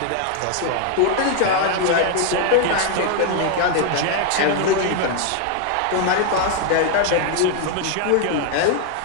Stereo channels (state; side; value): different; both; correlation 0.00